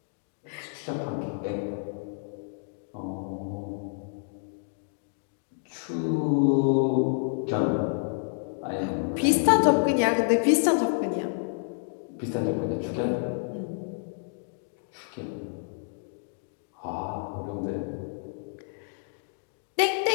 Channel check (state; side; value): silent; right; digital silence